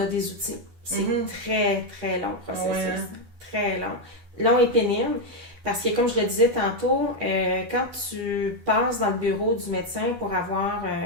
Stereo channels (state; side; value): late; left; 12 ms